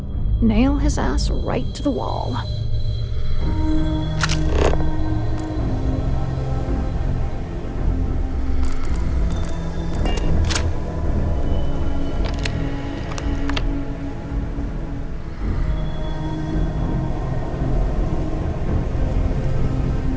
Nail his ass right to the wall.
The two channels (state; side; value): identical; both; correlation 1.00